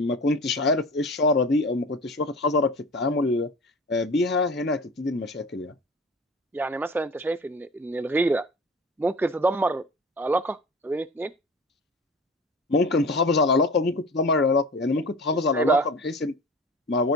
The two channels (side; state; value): both; normal; correlation 0.37